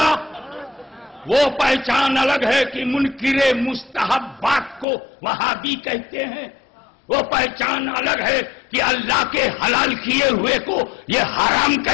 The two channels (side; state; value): right; drops out; at 4.9 s